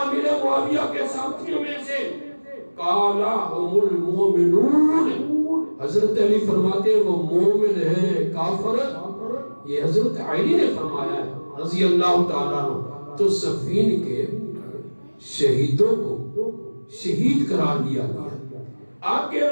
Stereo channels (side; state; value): both; inverted; correlation -1.00